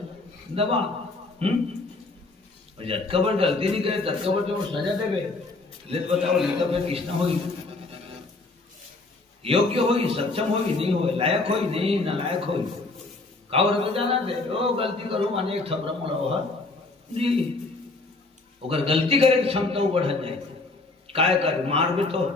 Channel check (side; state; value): right; quieter; 3.3 dB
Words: दबा। और जब पर गलती नहीं करे तब पर तो सजा देवे ले बताओ लेकर फिर किसना होगी योग्य होगी सक्षम होगी नहीं हो लायक होगी नहीं नालायक होगी कावर तो जाना दे ओ गलती करूं अनेक थपरा मोड़ा हो जी अगर गलती करे तो क्षमता बढ़ जाए काय कर मार भी तो